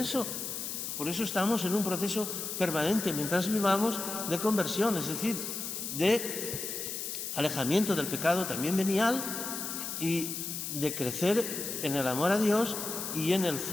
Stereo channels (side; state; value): left; noise; hiss, 5 dB below the sound